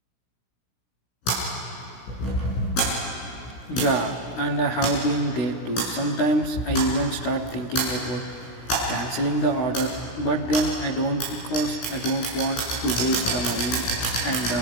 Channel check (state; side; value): late; right; 17 ms